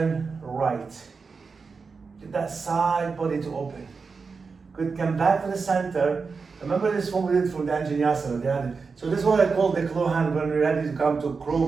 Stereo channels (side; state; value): left; quieter; 4.8 dB